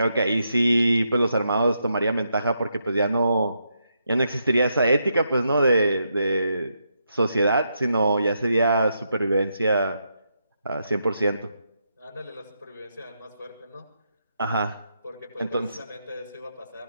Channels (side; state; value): both; inverted; correlation -0.81